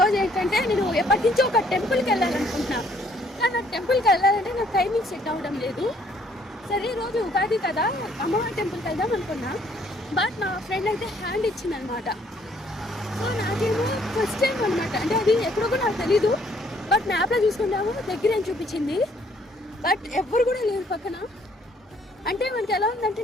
ఏంటంటే నేను ఎప్పటి నుంచో ఒక టెంపుల్కి వెళ్ళాలనుకుంటున్నా, కానీ నాకు టెంపుల్కి వెళ్ళాలంటే నాకు టైమింగ్ సెట్ అవ్వడం లేదు. సరే ఈరోజు ఉగాది కదా, అమ్మవారి టెంపుల్కి వెళ్దాం అనుకున్నా. బట్ మా ఫ్రెండ్ అయితే హ్యాండ్ ఇచ్చిందనమాట. సో నాకేమో ఫస్ట్ టైం అనమాట, అంటే అది ఎప్పుడో కూడా నాకు తెలీదు. బట్ మ్యాప్లో చూసుకుంటాము దగ్గర అని చూపించింది, బట్ ఎవ్వరు కూడా లేరు పక్కన. అంటే మనకి ఎలా ఉందంటే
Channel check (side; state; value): both; normal; correlation 0.64